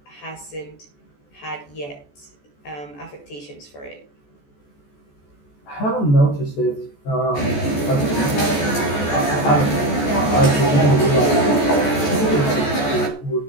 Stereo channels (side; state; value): right; late; 14 ms